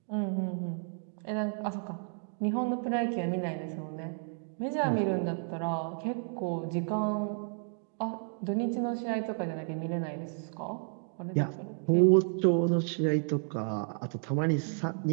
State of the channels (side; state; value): left; silent; 57 dB below the other